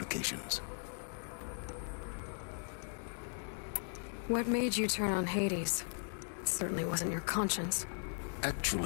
What made you turn on Hades? It certainly wasn't your conscience.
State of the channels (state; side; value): silent; right; 52 dB below the other